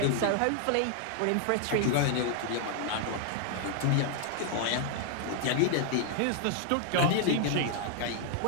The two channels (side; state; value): both; different; correlation 0.00